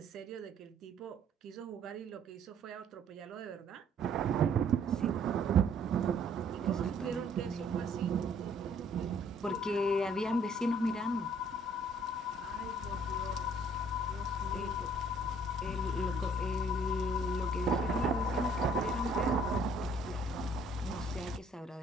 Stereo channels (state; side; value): normal; both; correlation 0.60